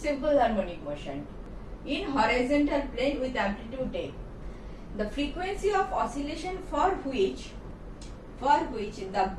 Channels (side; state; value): both; identical; correlation 1.00